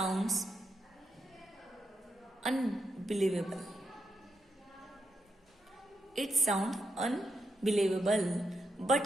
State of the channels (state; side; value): normal; both; correlation 0.84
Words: unbelievable, it sound unbelievable